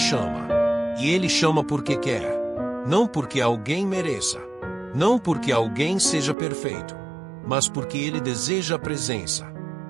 E ele chama porque quer. Não porque alguém mereça. Não porque alguém seja perfeito. Mas porque ele deseja a presença.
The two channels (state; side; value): drops out; left; at 6.4 s